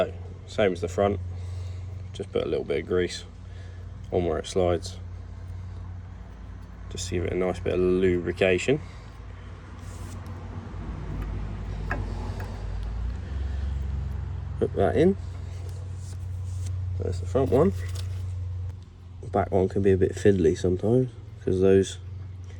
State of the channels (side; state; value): both; identical; correlation 1.00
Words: same as the front, just put a little bit of grease on where it slides, just to give it a nice bit of lubrication. Put that in. There's the front one. The back one can be a bit fiddly sometimes because those